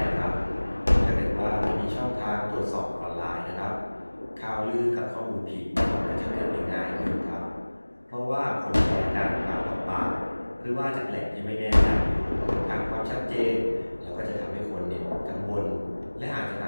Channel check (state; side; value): inverted; both; correlation -1.00